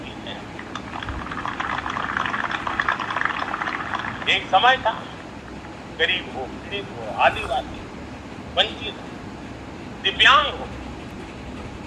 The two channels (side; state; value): both; identical; correlation 1.00